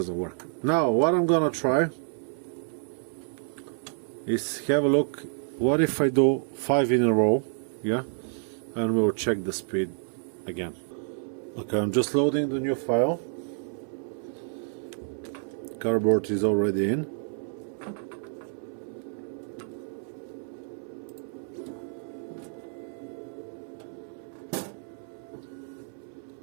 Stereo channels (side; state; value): left; silent; 59 dB below the other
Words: work. Now what I'm gonna try is have a look. What if I do 5 in a row? Yeah, and we'll check the speed again. Okay, I'm just loading the new file. Cardboard is already in.